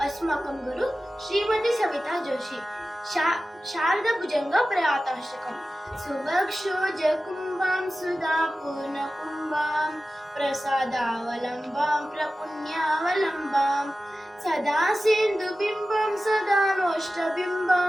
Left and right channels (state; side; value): normal; both; correlation 0.95